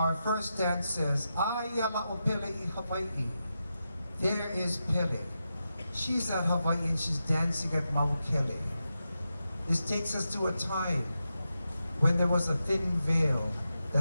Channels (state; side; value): inverted; both; correlation -0.89